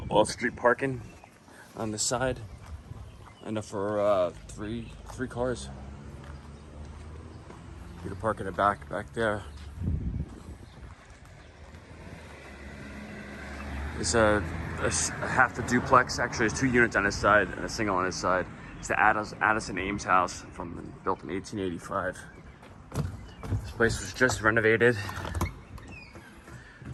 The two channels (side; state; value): both; identical; correlation 1.00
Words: off-street parking on the side, enough for three cars. You can park in the back there. It's a half the duplex. Actually, there's 2 units on this side and a single on this side. It's the Addison Ames house built in 1885. This place was just renovated.